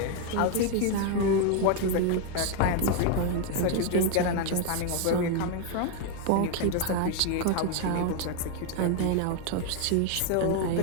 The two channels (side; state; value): both; different; correlation 0.01